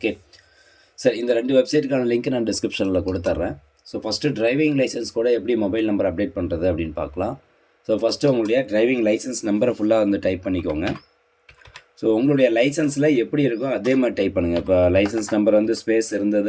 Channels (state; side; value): identical; both; correlation 1.00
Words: சார், இந்த ரெண்டு வெப்சைட்டுக்கான லிங்க் நான் டிஸ்கிரிப்ஷனில் கொடுத்துட்றேன். ஸோ ஃபஸ்ட்டு டிரைவிங் லைசன்ஸ் கூட எப்படி மொபைல் நம்பர் அப்டேட் பண்ணுறது அப்படின்னு பார்க்கலாம். ஸோ ஃபஸ்ட்டு உங்களுடைய டிரைவிங் லைசன்ஸ் நம்பரை ஃபுல்லாக வந்து டைப் பண்ணிக்கோங்க. ஸோ உங்களுடைய லைசன்ஸில் எப்படி இருக்கோ அதே மாதிரி டைப் பண்ணுங்கள். இப்போ லைசன்ஸ் நம்பர் வந்து ஸ்பேஸ்